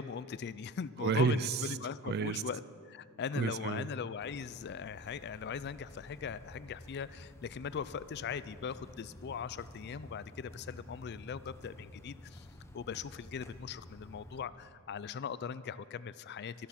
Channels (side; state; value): both; normal; correlation 0.26